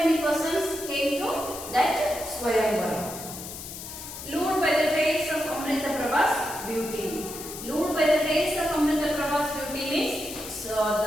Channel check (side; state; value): left; noise; hiss, 10 dB below the sound